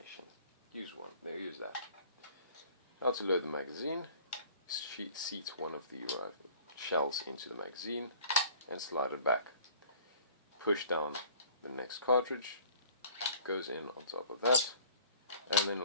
Use one. There, use that. How to load the magazine. Seat one of the shells into the magazine and slide it back. Push down the next cartridge. Goes in on top of that, and then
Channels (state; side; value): inverted; both; correlation -0.50